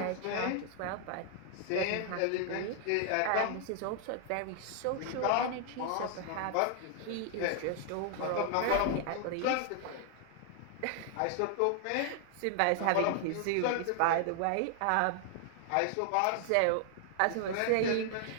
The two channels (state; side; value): different; both; correlation 0.00